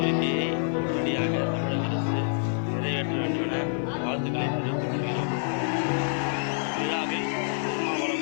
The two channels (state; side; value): silent; right; 55 dB below the other